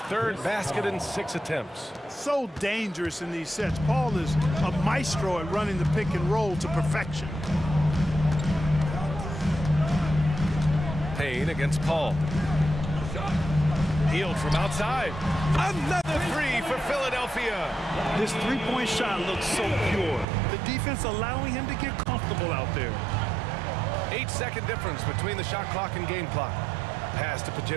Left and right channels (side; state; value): left; drops out; at 20.2 s